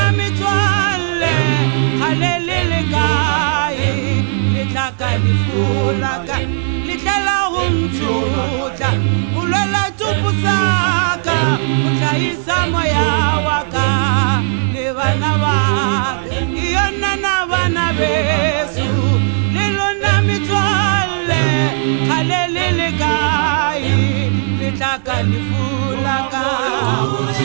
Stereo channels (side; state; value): left; silent; digital silence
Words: mitswale khalelele kae litlaka lifulaka litlela humtsuta ulola tupusaka utlaisa moya waka le bana ba yona na bana beso lilona mitswale khalelele kae litlaka lifulaka